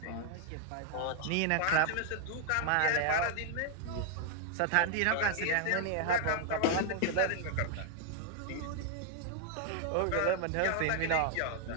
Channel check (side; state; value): both; different; correlation 0.00